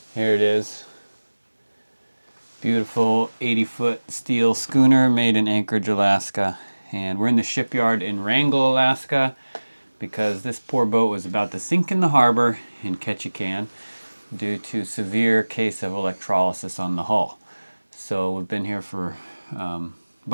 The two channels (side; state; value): both; inverted; correlation -1.00